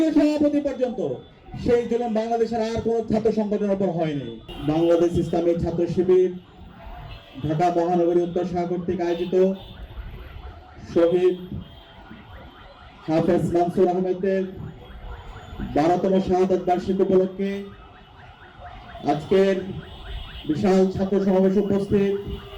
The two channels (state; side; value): identical; both; correlation 1.00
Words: সভাপতি পর্যন্ত, সেই জুলুম বাংলাদেশের আর কোনো ছাত্র সংগঠনের উপর হয়নি। বাংলাদেশ ইসলামী ছাত্র শিবির ঢাকা মহানগরী উত্তর শাখা কর্তৃক আয়োজিত শহীদ হাফেজ মানসুর আহমেদের 12তম শাহাদাত বার্ষিকী উপলক্ষে আজকের বিশাল ছাত্র সমাবেশ উপস্থিত,